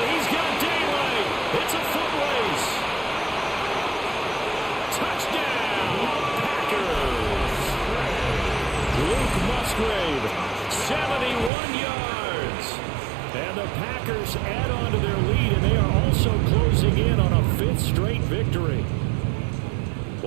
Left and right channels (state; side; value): drops out; left; at 11.5 s